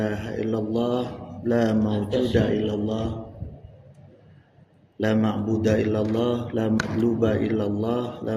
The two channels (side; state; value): both; identical; correlation 1.00